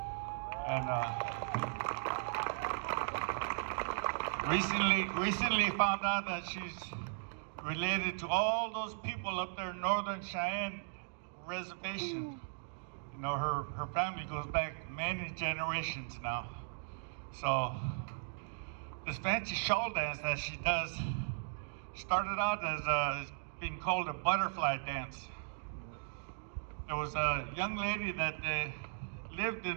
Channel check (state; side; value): silent; left; digital silence